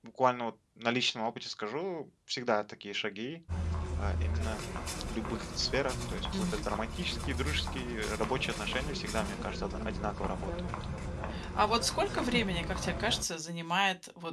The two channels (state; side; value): identical; both; correlation 1.00